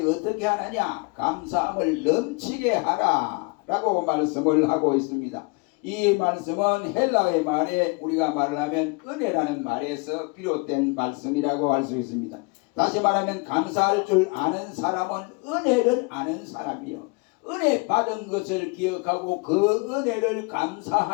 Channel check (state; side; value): quieter; right; 30.1 dB